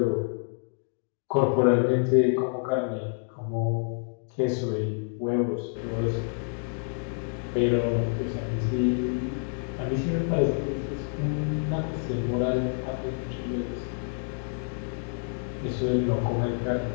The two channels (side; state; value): right; silent; 59 dB below the other